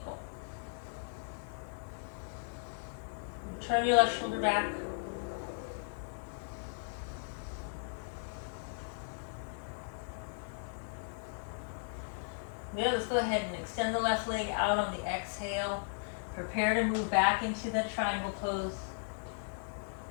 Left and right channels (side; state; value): right; silent; 53 dB below the other